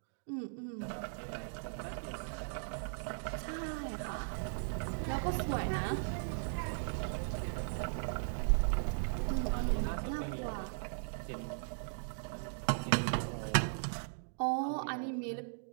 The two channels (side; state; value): left; silent; digital silence